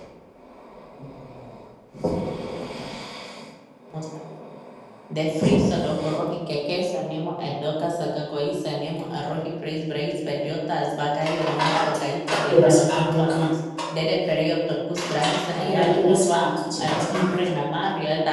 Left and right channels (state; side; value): identical; both; correlation 1.00